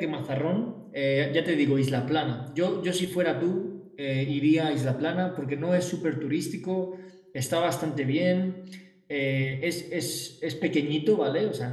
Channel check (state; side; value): identical; both; correlation 1.00